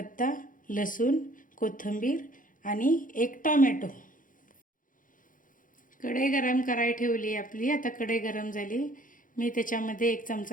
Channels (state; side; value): late; right; 0.39 ms